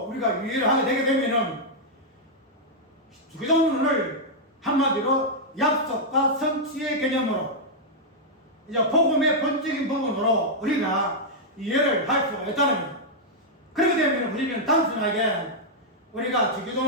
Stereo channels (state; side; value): normal; both; correlation -0.05